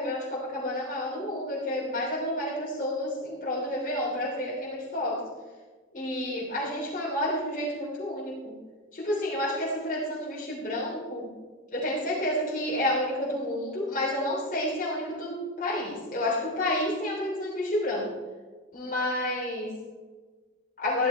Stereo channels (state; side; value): normal; both; correlation 0.11